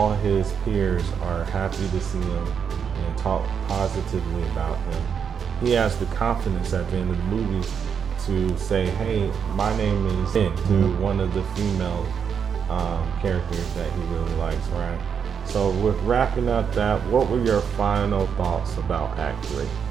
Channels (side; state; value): left; quieter; 7.1 dB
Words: his peers are happy to see him and talk positively about him. He has the confidence at the end of the movie to say, hey, my name is Finn, to one of the female characters that he really likes, right? So with wrapping up that, what were your final thoughts about Act 3?